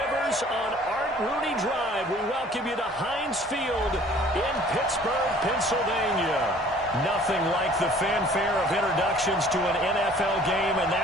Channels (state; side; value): normal; both; correlation 0.53